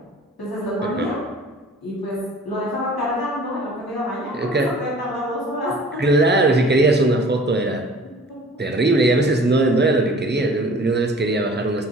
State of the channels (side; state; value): both; normal; correlation 0.48